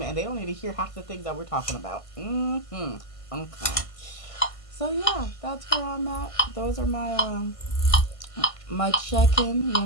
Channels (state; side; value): late; right; 1.5 ms